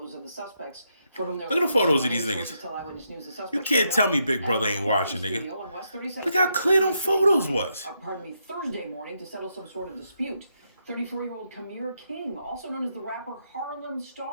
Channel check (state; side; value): inverted; both; correlation -0.80